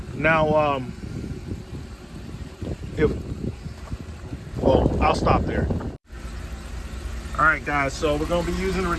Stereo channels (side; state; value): both; identical; correlation 1.00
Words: Now, I'll stop there. All right, guys. So we're going to be using the